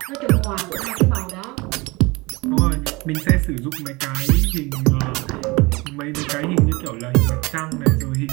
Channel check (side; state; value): left; quieter; 24.3 dB